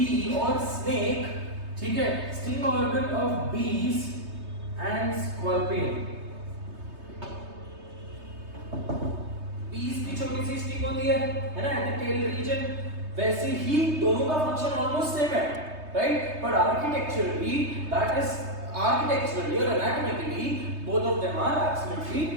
or snake. ठीक है. Sting organ of bees and scorpion. bees की छोटी सी स्टिंग होती है ना, एट द टेल रीजन. वैसे ही दोनों का फंक्शन ऑलमोस्ट सेम है, राइट. बट आर्किटेक्चरली और anatomically both of them are absolutely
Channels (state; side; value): late; left; 3.2 ms